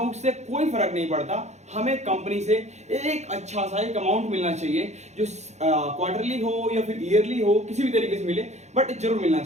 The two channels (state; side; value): late; left; 0.33 ms